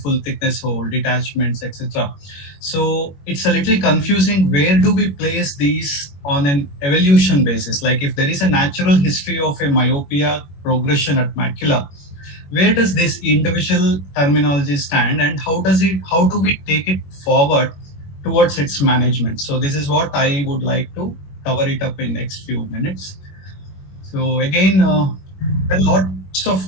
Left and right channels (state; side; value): late; right; 21 ms